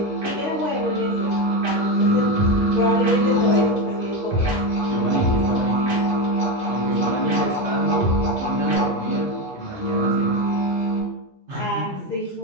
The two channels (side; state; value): both; normal; correlation 0.14